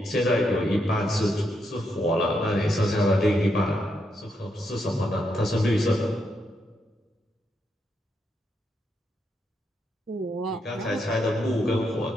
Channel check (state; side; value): normal; both; correlation 0.80